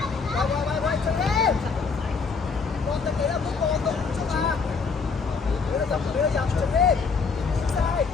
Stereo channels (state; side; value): quieter; right; 5.1 dB